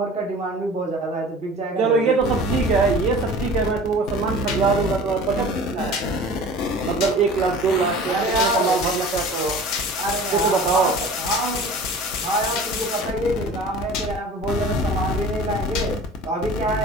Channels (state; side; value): normal; both; correlation 0.41